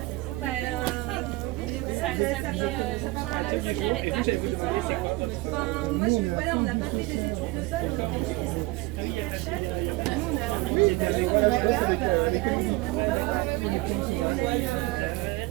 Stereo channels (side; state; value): left; quieter; 21.3 dB